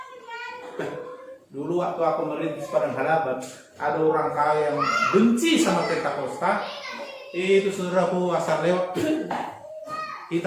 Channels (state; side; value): identical; both; correlation 1.00